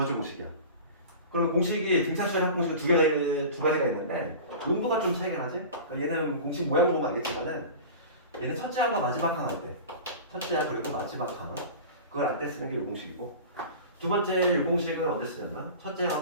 공식이야. 그러면 공식이 등차수열 합공식은 두 가지가 있는데 용도가 좀 차이가 나지? 그러니까 얘는 공식 모양 보면 알겠지만은 얘는 첫째 항과 마지막 항 할 때 첫째 항 그리고 마지막 항 그걸 알 때 쓰는 게 이 공식이고 두 번째 이 공식은 언제 쓰냐면 첫째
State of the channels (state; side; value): inverted; both; correlation -0.36